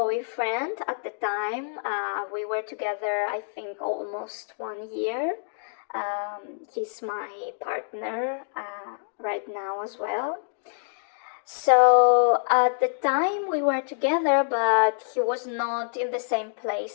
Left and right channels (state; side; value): silent; right; digital silence